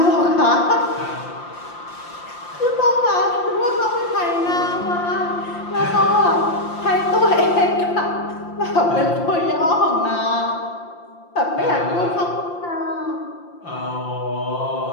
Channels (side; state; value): right; late; 5.8 ms